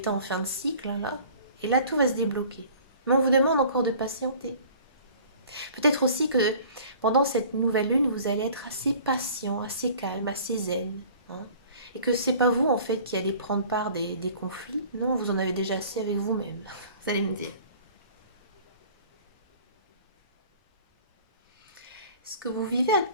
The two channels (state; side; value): inverted; both; correlation -0.48